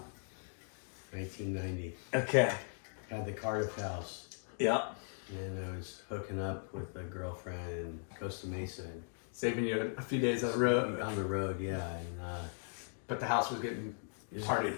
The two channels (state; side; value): silent; right; digital silence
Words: 1990. okay. Had the Cardiff house. Yeah. And then I was hooking up with a girlfriend in Costa Mesa. Saving you a few days on the road. On the road, yeah. And But the house was getting partied.